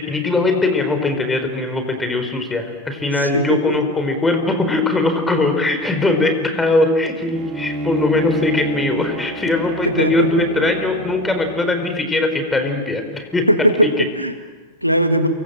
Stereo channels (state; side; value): normal; both; correlation 0.27